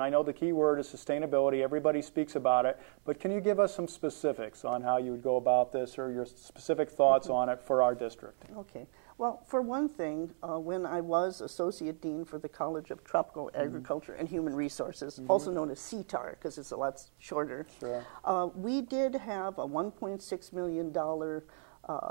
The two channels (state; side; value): silent; left; 55 dB below the other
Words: I know the key word is sustainability. Everybody speaks about it. But can you give us some specifics on how you would go about this, or your specific thoughts on it for our district? Okay. Well, for one thing, when I was Associate Dean for the College of Tropical Agriculture and Human Resources, also known as CTAR because it's a lot shorter, we did have a $1.6 million